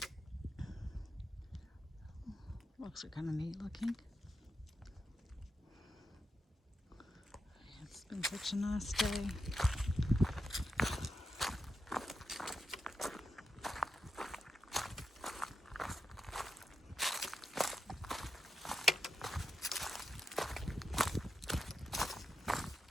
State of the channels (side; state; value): both; normal; correlation 0.87